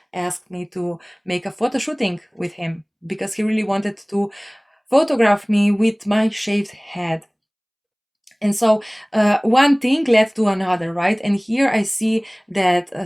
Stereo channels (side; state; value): both; identical; correlation 1.00